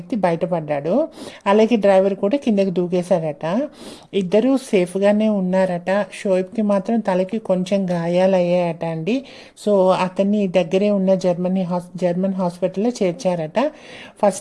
బయటపడ్డాడు. అలాగే డ్రైవర్ కూడా కిందకి దూకేశాడట. ఇద్దరూ సేఫ్గానే ఉన్నారట. షోయబ్కి మాత్రం తలకి కొంచెం గాయాలయ్యాయట అండి. సో అతన్ని దగ్గరే ఉన్న జర్మన్ హాస్పిటల్లో చేర్చారట.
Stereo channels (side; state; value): both; identical; correlation 1.00